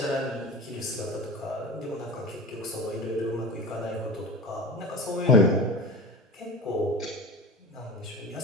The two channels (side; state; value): both; normal; correlation 0.32